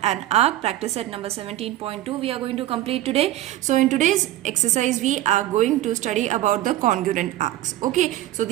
and arc practice set number 17.2 we are going to complete today. So in today's exercise we are going to study about the congruent arcs. Okay, so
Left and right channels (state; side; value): quieter; left; 14.6 dB